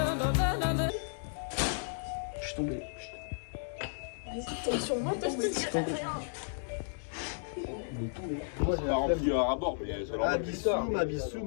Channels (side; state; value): right; silent; digital silence